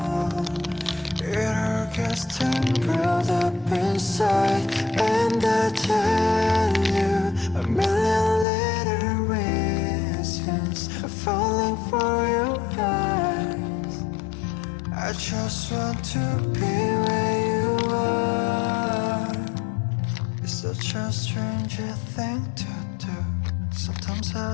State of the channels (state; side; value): drops out; right; at 8.5 s